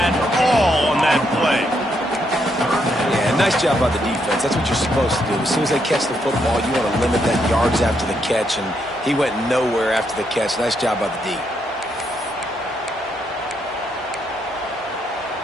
all on that play. Yeah, nice job by the defense. That's what you're supposed to do. As soon as they catch the football, you want to limit that yards after the catch, and he went nowhere after the catch. Nice job by the D.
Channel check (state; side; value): normal; both; correlation 0.77